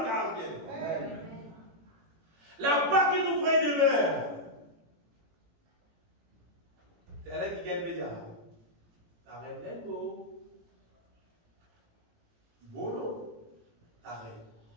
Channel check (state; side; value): late; left; 18 ms